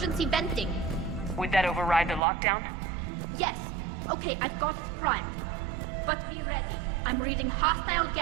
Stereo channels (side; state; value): left; drops out; at 2.2 s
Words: venting. Would that override the lockdown? Yes. Okay, I've got it primed. But be ready. I'm reading hostile